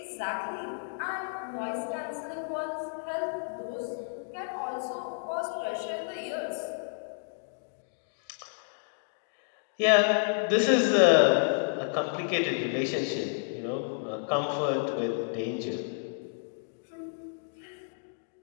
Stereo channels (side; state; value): right; silent; digital silence